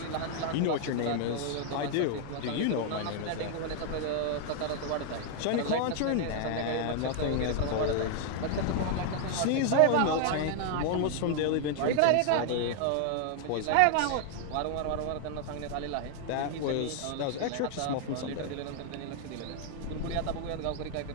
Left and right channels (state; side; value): different; both; correlation 0.00